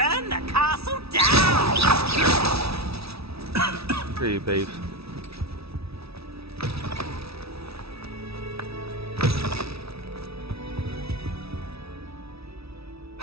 the castle down. Pretty beef.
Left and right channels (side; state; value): left; late; 0.77 ms